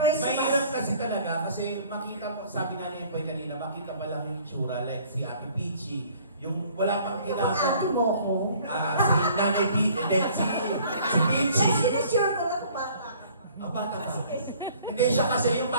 kasi talaga, kasi makita mo, sabi nga niya po kanina, makita ba lang yung itsura, like si Ate Peachy, yung wala pang ginagawa. Ate mo ko? Si Nanay Peachy, si Peachy. Sinasure ko lang bata. Bata pa. Hindi siya kasi yung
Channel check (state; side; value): inverted; both; correlation -0.54